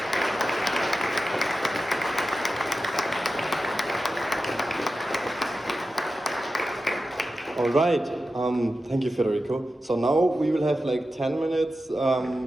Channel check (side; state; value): both; normal; correlation 0.92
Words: All right, thank you, Federico. So now we will have like 10 minutes